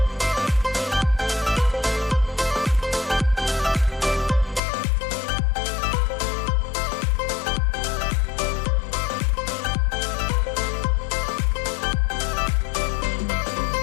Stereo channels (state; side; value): drops out; right; at 4.6 s